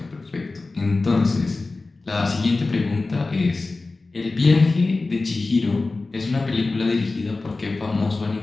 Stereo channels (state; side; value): quieter; right; 3.5 dB